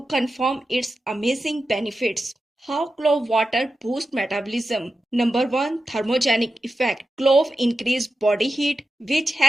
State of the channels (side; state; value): both; normal; correlation 0.91